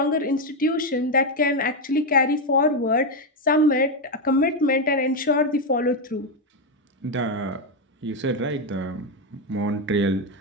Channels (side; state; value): both; normal; correlation 0.06